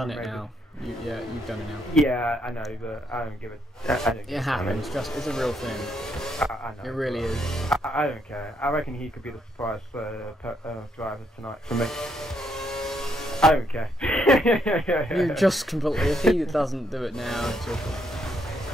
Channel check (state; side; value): normal; both; correlation 0.75